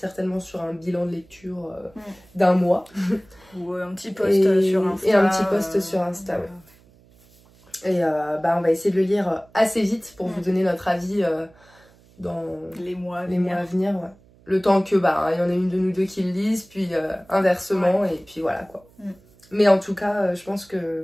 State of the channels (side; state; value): right; noise; hum, 28 dB below the sound